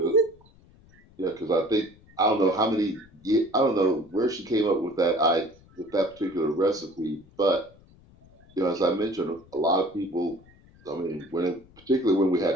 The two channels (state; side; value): noise; left; rumble, 27 dB below the sound